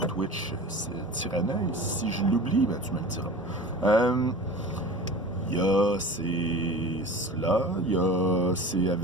Twitch, c'est Tyranneuil. Si je l'oublie, tu me le diras. Il y a c'est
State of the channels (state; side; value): normal; both; correlation 0.37